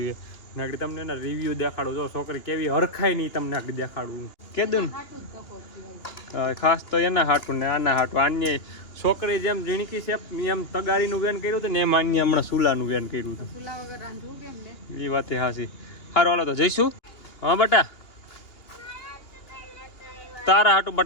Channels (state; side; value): late; right; 2.8 ms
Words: નાગડી. તમને એના રિવ્યુ દેખાડું જો છોકરી કેવી હરખાય નહીં તમને આગળ દેખાડું કેદું ખાસ તો એના હાટું ને આના હાટું. આને છોકરી જેમ ઝીણકી છે એમ તગારીનું વેન કર્યું હતું ને એમ આને હમણાં ચૂલાનું વેન કર્યું હતું. એ વાત હાસી. સારું હાલો તો જઈશું. હા બટા તારા હાટું